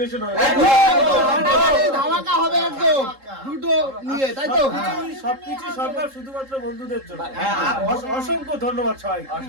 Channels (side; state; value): left; late; 3.7 ms